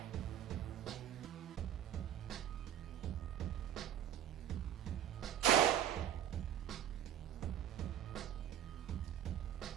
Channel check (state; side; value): quieter; left; 10.6 dB